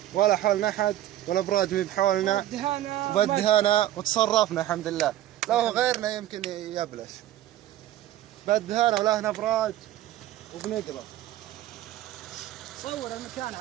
ولا حولنا احد ولا براد بحولنا. بالدهانة وتصرفنا الحمد لله. لو غيرنا يمكن يبلش. بالدهانة ولا هنا براد وبنقرا. صور المكان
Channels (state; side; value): quieter; left; 13.6 dB